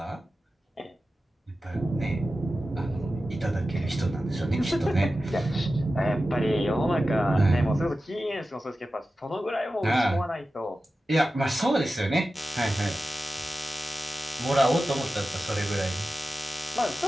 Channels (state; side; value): normal; both; correlation 0.94